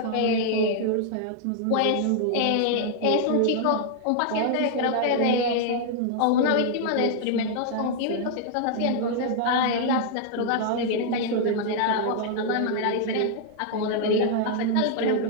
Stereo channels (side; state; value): both; different; correlation -0.01